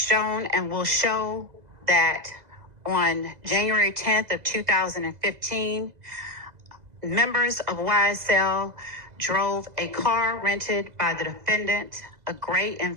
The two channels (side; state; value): left; late; 2.0 ms